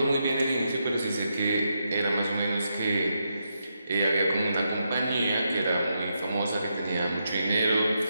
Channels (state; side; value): inverted; both; correlation -0.82